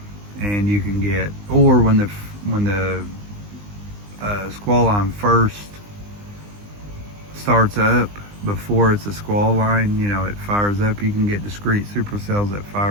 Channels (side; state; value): left; late; 20 ms